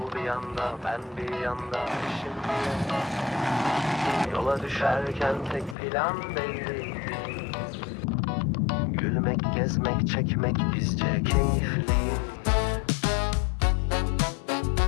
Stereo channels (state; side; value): drops out; right; at 5.8 s